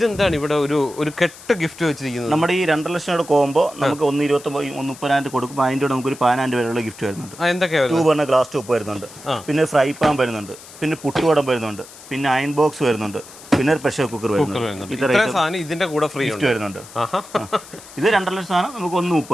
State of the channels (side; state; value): left; noise; hiss, 18 dB below the sound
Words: ഇവിടെ ഒരു കെട്ട് ഗിഫ്റ്റ് വെച്ചിരിക്കുന്നത്? നമ്മുടെ ഈ 2 ലക്ഷം രൂപ കോമ്പോ നമുക്ക് 1,29,000 കൊടുക്കും. അതിൻ്റെ കൂടെ നമുക്ക് ഒരു 14,000 വരെയുള്ള ഗിഫ്റ്റ് വരുന്നുണ്ട്. എന്തൊക്കെയാണ്? 2 പറഞ്ഞ ഗ്ലാസ് ടോപ്പ് വരുന്നുണ്ട്, പിന്നെ ഫ്രൈ പാൻ വരുന്നുണ്ട്, പിന്നെ പുട്ടുവടം വരുന്നുണ്ട്, പിന്നെ അയൺ ബോക്സ് വരുന്നുണ്ട്, പിന്നെ ഒരു പ്രഷർ കുക്കർ വരുന്നുണ്ട്. ഇതിന്റെ കൂടെ ഫ്രീ വരുന്നുണ്ട്. ഇത് 2 ലക്ഷം സാധനം നമുക്ക്